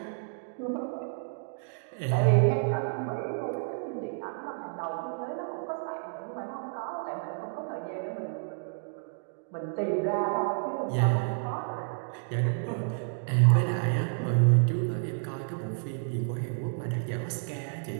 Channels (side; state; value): left; silent; digital silence